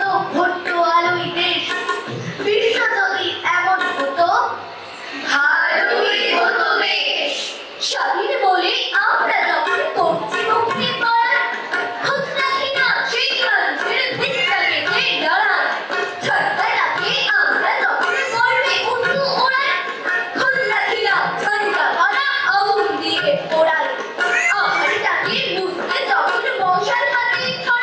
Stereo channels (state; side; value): identical; both; correlation 1.00